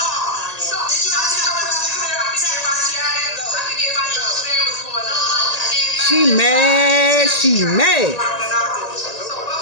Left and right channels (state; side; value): late; right; 1.8 ms